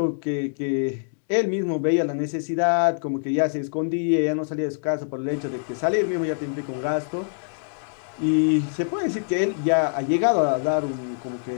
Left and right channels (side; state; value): right; silent; digital silence